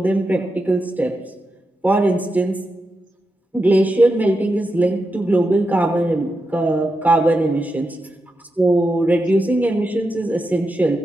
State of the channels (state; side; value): normal; both; correlation 0.88